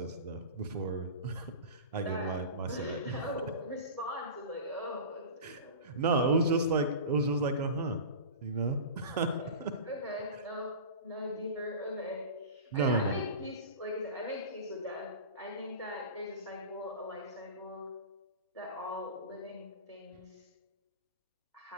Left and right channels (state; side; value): inverted; both; correlation -0.32